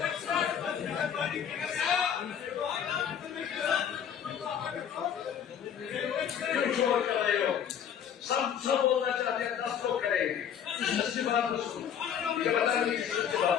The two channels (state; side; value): quieter; right; 8.6 dB